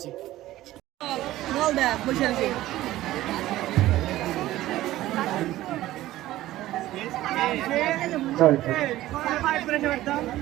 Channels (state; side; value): quieter; left; 15.4 dB